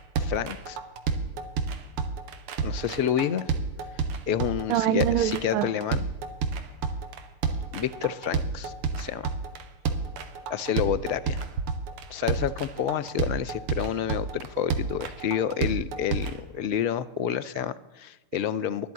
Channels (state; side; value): late; left; 6.9 ms